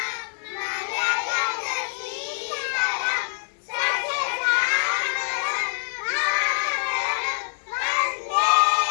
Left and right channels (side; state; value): right; silent; 61 dB below the other